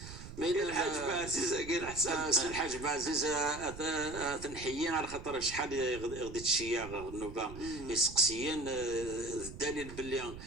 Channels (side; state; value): right; noise; rumble, 12 dB below the sound